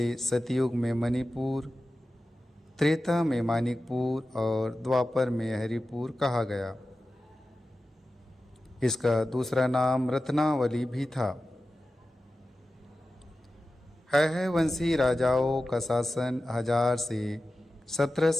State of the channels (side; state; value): both; normal; correlation 0.94